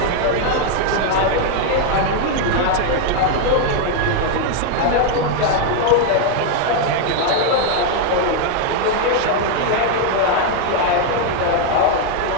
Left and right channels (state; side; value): different; both; correlation 0.00